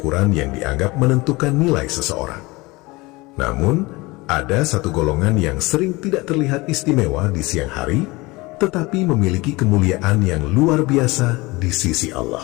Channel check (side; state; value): right; quieter; 22.9 dB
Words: yang dianggap menentukan nilai seseorang. Namun, ada satu golongan yang sering tidak terlihat istimewa di siang hari, tetapi memiliki kemuliaan yang luar biasa di sisi